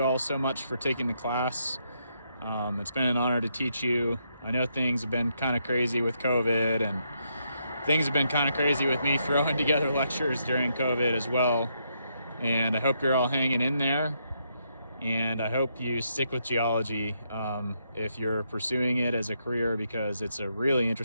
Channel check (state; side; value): inverted; both; correlation -0.78